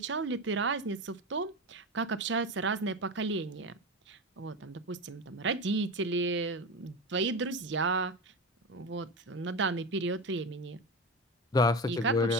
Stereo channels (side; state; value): both; normal; correlation 0.22